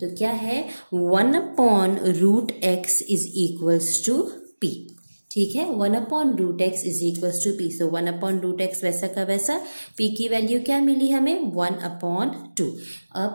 तो क्या है, 1/√x is equals to p। ठीक है, 1/√x is equals to p. So 1/√x वैसा का वैसा, p की वैल्यू क्या मिली हमें 1/2।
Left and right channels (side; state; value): both; inverted; correlation -1.00